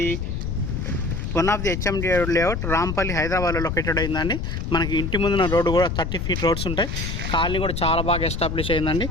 one of the HMD layout Rampalli హైదరాబాద్లో లొకేటెడ్ అయిందండి. మనకి ఇంటి ముందున్న రోడ్డు కూడా 30 ఫీట్ రోడ్స్ ఉంటాయి. కాలనీ కూడా చాలా బాగా ఎస్టాబ్లిష్ అయిందండి.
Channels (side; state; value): left; noise; rumble, 3 dB below the sound